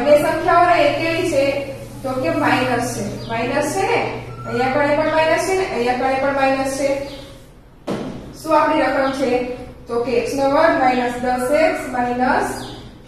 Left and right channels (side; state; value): both; identical; correlation 1.00